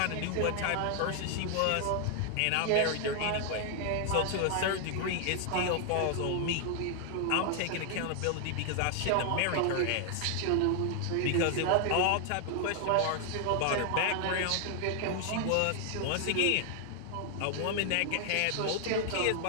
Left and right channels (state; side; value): different; both; correlation 0.00